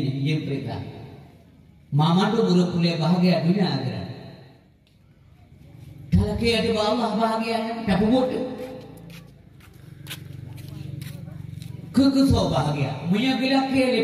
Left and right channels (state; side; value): identical; both; correlation 1.00